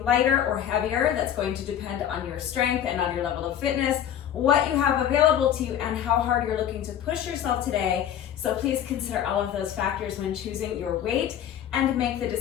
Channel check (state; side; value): quieter; right; 10.1 dB